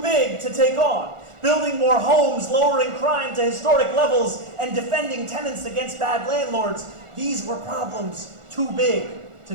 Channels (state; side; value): late; left; 1.4 ms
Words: big to take on. Building more homes, lowering crime to historic levels, and defending tenants against bad landlords, these were problems too big to